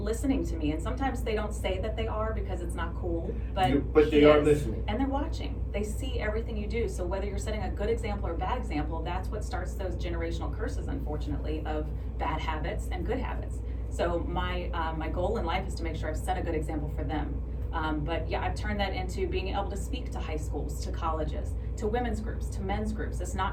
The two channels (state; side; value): identical; both; correlation 1.00